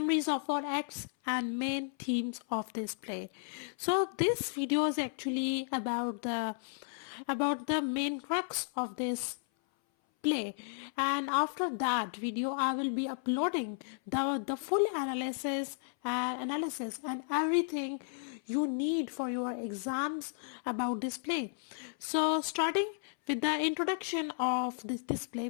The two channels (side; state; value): right; silent; 55 dB below the other